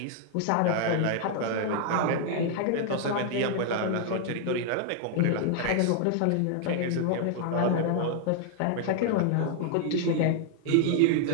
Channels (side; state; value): both; different; correlation 0.00